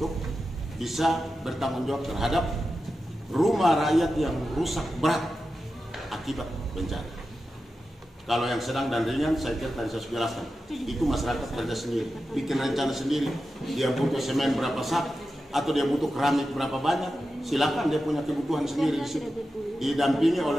bisa bertanggung jawab terhadap rumah rakyat yang rusak berat akibat bencana. Kalau yang sedang dan ringan, saya kira tadi saya sudah jelaskan, itu masyarakat kerja sendiri, bikin rencana sendiri, dia butuh semen berapa sak, atau dia butuh keramik berapa banyak, silakan dia punya kebutuhan sendiri di situ, didampingi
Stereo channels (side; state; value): both; normal; correlation 0.91